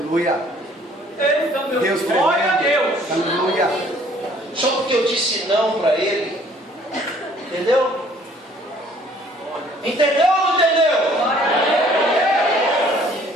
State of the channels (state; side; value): normal; both; correlation 0.58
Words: Deus, glória a Deus. Aleluia. Só porque eu disse não para ele. Entendeu? Entendeu ou não entendeu?